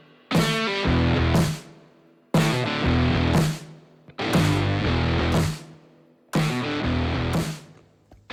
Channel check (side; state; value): both; identical; correlation 1.00